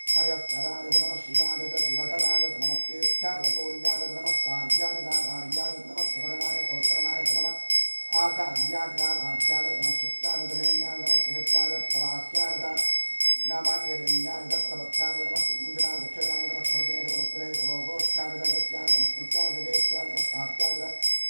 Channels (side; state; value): both; inverted; correlation -1.00